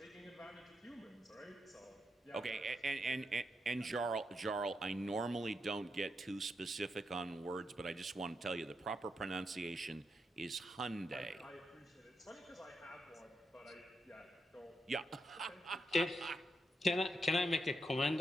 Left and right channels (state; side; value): normal; both; correlation 0.84